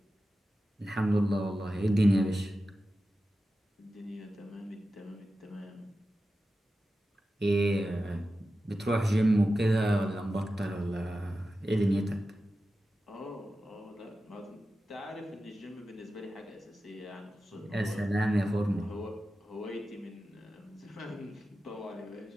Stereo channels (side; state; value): both; normal; correlation 0.93